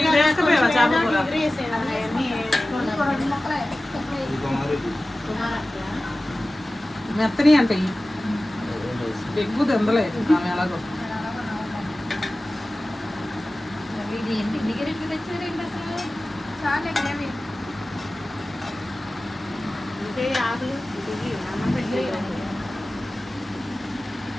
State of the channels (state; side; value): normal; both; correlation 0.96